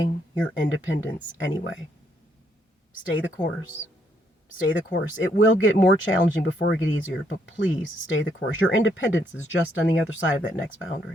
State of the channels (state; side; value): normal; both; correlation 0.73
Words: your independence anyway. Stay the course. Stay the course. It will get more challenging before it gets easier, but please stay the course. Your independence is just on the other side of that next